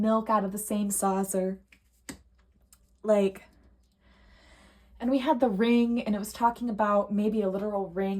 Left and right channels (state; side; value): identical; both; correlation 1.00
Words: milk out of the same saucer. Like, and we had the ring, and it was talking about maybe a literal